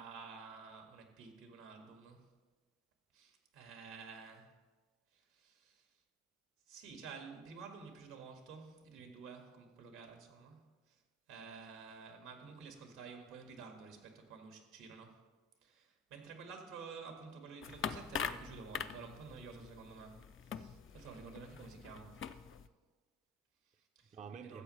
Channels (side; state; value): both; normal; correlation 0.36